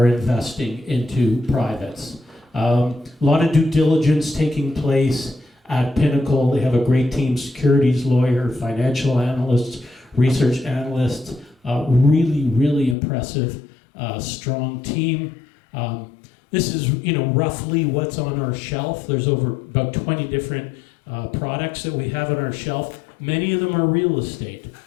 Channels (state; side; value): drops out; right; at 13.0 s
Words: investing into privates. A lot of due diligence taking place at Pinnacle. They have a great team, securities lawyer, financial analysts, research analysts, really, really impressive, strong team. This is, roughly what's on our shelf. There's about 20 different products that we have on our shelf. Many of them are real estate.